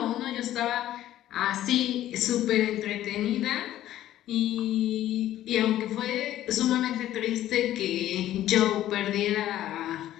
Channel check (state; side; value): quieter; right; 13.1 dB